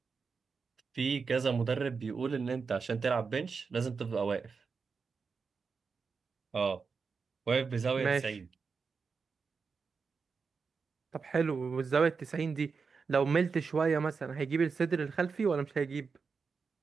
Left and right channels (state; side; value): quieter; left; 5.1 dB